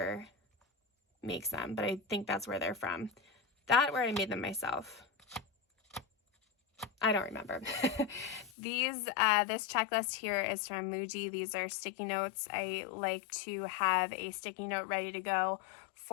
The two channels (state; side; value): drops out; right; at 8.5 s